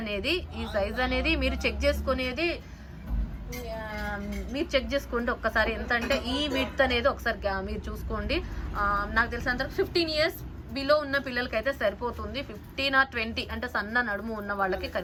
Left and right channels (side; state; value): both; identical; correlation 1.00